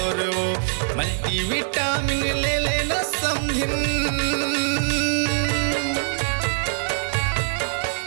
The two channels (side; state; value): left; silent; digital silence